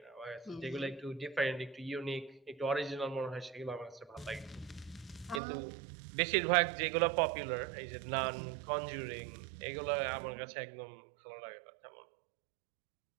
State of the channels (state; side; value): drops out; left; at 5.4 s